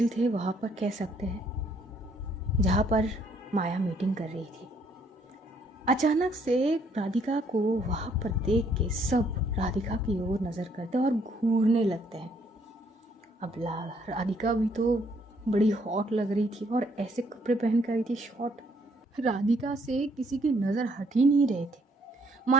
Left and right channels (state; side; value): normal; both; correlation 0.67